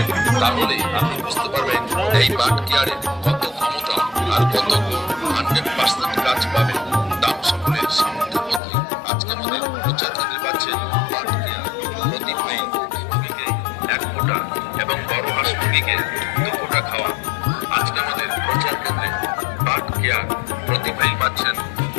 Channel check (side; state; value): right; drops out; at 8.6 s